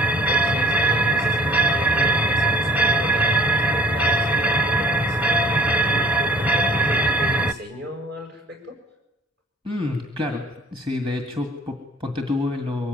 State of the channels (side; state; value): both; normal; correlation 0.52